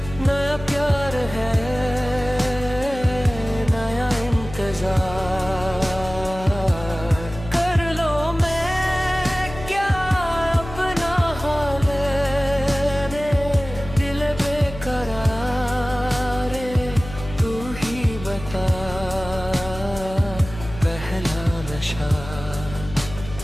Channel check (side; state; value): left; noise; hum, 12 dB below the sound